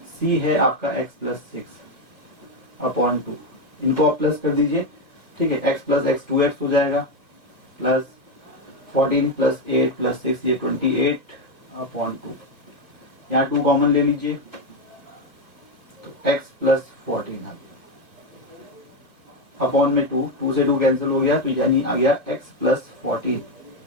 सी है आपका एक्स प्लस 6 अपॉन 2। इनको आप प्लस कर दीजिए। ठीक है, एक्स प्लस एक्स 2x हो जाएगा, प्लस 14 प्लस 8 प्लस 6 ये 28 अपॉन 2। यहाँ 2 कॉमन ले लीजिए, तो x प्लस 14 आ गया अपॉन में 2 से 2 कैंसिल हो गया, तो यानी आ गया x प्लस 14।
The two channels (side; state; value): right; late; 1.9 ms